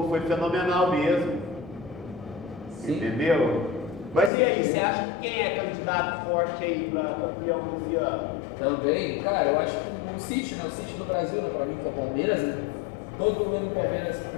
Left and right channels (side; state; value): right; drops out; at 4.3 s